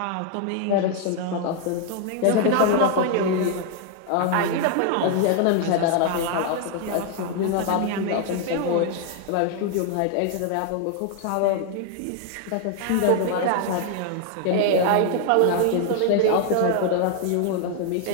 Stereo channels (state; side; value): different; both; correlation 0.00